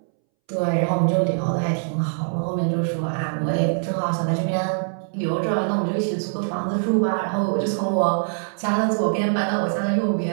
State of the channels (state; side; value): silent; left; 63 dB below the other